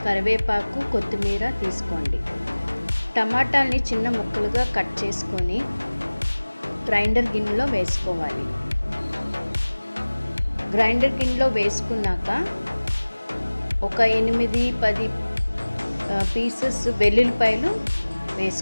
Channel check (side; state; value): both; inverted; correlation -1.00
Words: కరివేపాకు, కొత్తిమీర తీసుకోండి. టమాటాల్ని చిన్న ముక్కలుగా కట్ చేసుకొని గ్రైండర్ గిన్నెలో వేసుకోవాలి. గ్రైండర్ గిన్నెలో వేసుకున్నాక ఒక 8-10 పీసెస్ వెల్లుల్లిపాయలు